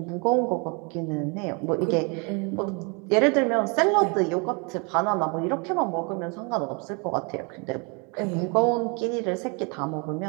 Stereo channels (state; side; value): quieter; left; 32.8 dB